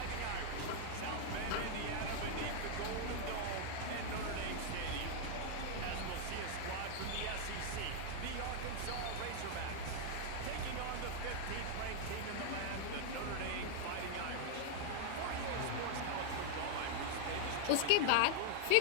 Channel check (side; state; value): both; different; correlation 0.00